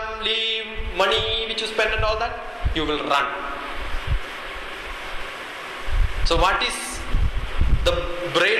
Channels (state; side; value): identical; both; correlation 1.00